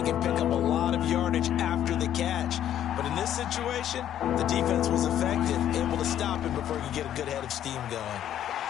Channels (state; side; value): quieter; right; 10.9 dB